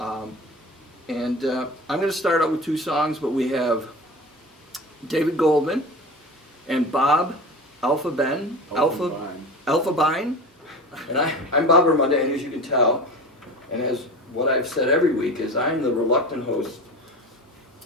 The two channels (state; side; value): normal; both; correlation 0.33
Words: going to start out with two songs, but we have David Goldman and Bob Elfenbein. Elfenbein. And I'm Bob Ramadani, as you can tell. And as what I've said every week is I'm the reluctant host